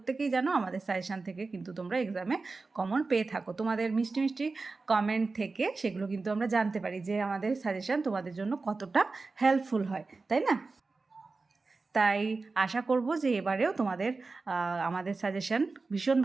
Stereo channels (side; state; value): left; quieter; 3.9 dB